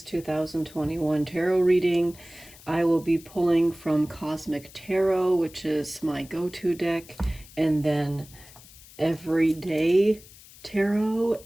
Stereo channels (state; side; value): noise; left; hiss, 21 dB below the sound